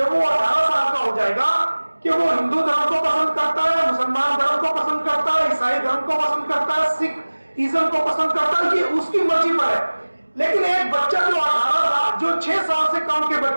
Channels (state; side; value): inverted; both; correlation -1.00